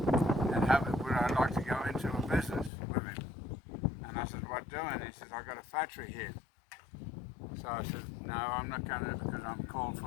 and would I like to go into a business with him? And I said, "What doing?" He says, "I got a factory here." So I said, "No, I'm not going to, because I'm called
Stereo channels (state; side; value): drops out; right; at 2.7 s